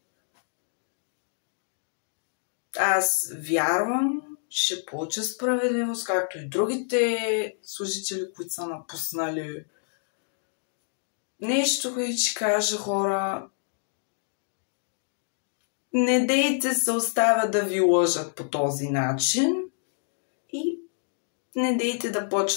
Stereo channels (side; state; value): right; silent; digital silence